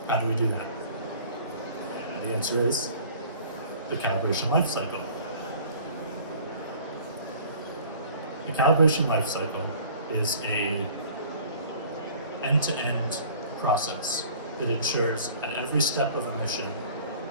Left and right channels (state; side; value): inverted; both; correlation -0.48